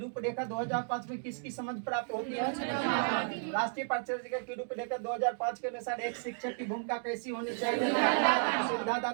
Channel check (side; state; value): left; silent; digital silence